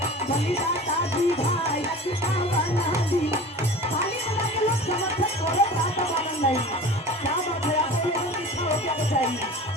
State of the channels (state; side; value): normal; both; correlation 0.37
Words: बनी जाता विधायक, कवन दिन। खाली बना के लोग समर्थन करो, बात मालूम नहीं क्या बात है। आपको लोगों की इच्छा हो क्या चाहिए।